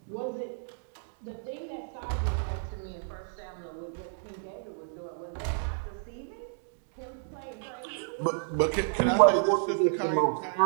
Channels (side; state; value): left; silent; digital silence